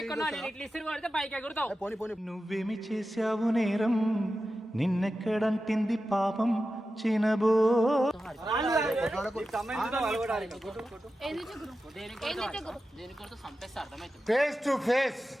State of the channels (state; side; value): normal; both; correlation 0.92